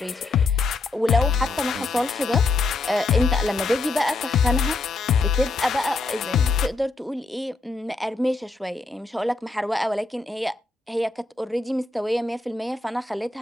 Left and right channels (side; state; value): right; quieter; 3.4 dB